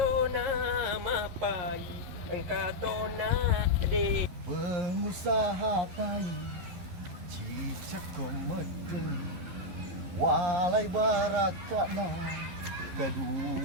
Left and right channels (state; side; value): late; left; 11 ms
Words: nama pai, engkau tahu nama de. Pengusaha pai, cicak komedeng, walai barakana,